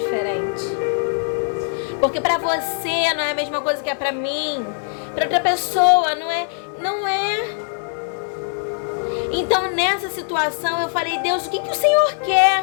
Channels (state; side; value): silent; right; 61 dB below the other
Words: Porque pra você não é a mesma coisa que é pra mim. Pra outra pessoa não é. Então, nessa situação, eu falei: Deus, o que o Senhor